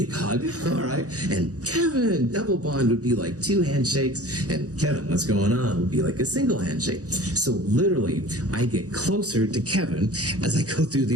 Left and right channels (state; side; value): late; left; 0.66 ms